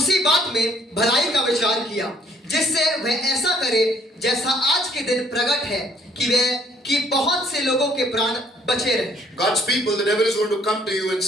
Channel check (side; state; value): both; normal; correlation 0.63